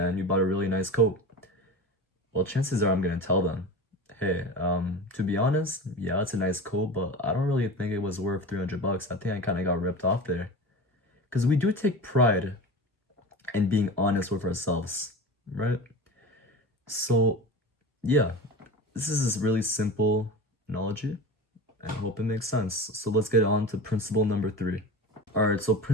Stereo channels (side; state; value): both; normal; correlation 0.31